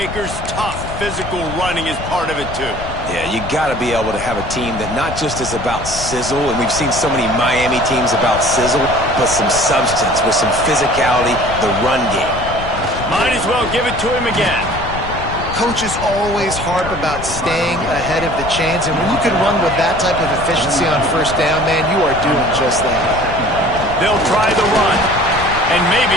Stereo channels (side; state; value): left; noise; rumble, 9 dB below the sound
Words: tough physical running is part of it too. Yeah, you got to be able to have a team that not just is about sizzle, and we've seen so many Miami teams about sizzle, but some substance with some physicality, the run game. Might as well give it to him again. Coaches always harp about staying ahead of the chains, and when you can run with that type of efficiency on first down, man, you are doing just that. They'll try the run, and